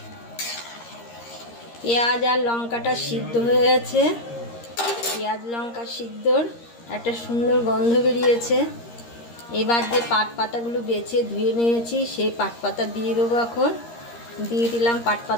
পেঁয়াজ আর লঙ্কাটা সিদ্ধ হয়ে গেছে। পেঁয়াজ লঙ্কা সিদ্ধর একটা সুন্দর গন্ধ বেরিয়েছে। এবার যে পাট পাতাগুলো বেছে ধুয়ে নিয়েছি সেই পাট পাতা দিয়ে দেবো। এখন দিয়ে দিলাম পাট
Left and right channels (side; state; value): right; late; 13 ms